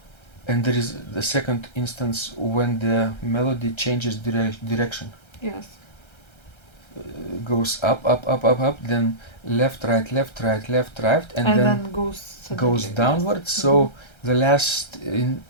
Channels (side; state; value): right; late; 1.3 ms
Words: And there is the second instance when the melody changes direction. Yes. Goes up, then left, right, and then goes downwards. So the last